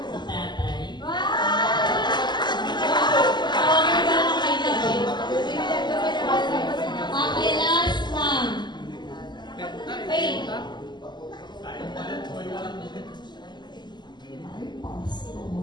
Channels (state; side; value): late; right; 0.21 ms